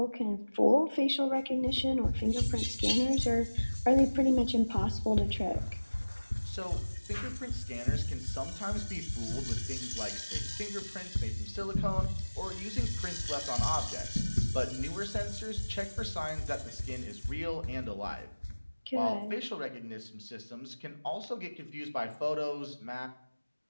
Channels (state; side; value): inverted; both; correlation -1.00